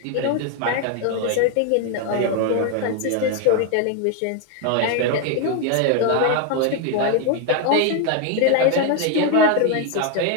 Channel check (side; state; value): both; different; correlation 0.01